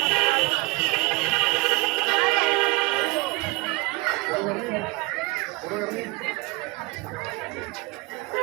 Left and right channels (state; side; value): quieter; left; 24.8 dB